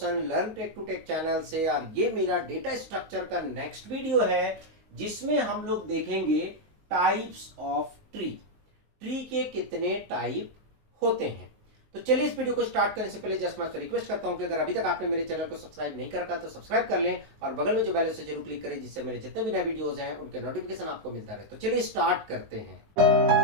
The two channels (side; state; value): left; late; 19 ms